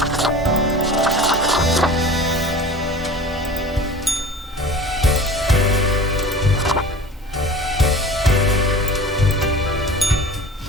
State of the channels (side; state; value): both; normal; correlation 0.40